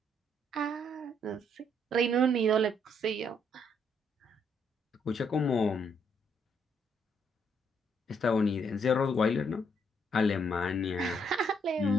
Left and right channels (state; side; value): normal; both; correlation 0.71